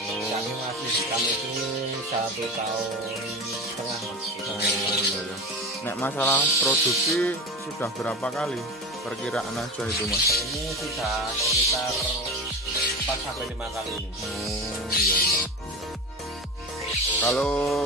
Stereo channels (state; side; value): normal; both; correlation 0.27